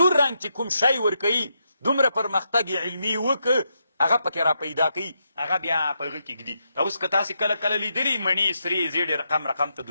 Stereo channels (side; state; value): both; inverted; correlation -0.82